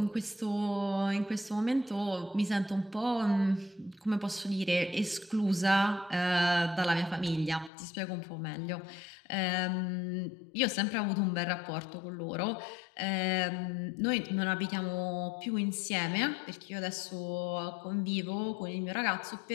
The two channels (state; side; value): drops out; right; at 7.7 s